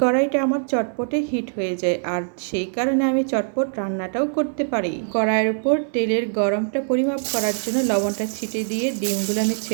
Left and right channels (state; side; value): silent; left; digital silence